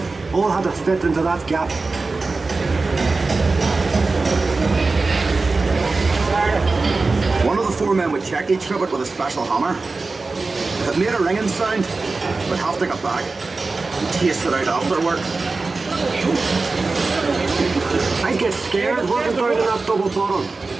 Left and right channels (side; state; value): left; quieter; 3.8 dB